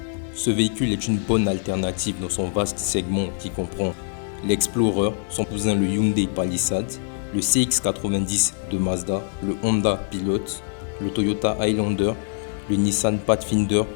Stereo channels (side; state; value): right; silent; 63 dB below the other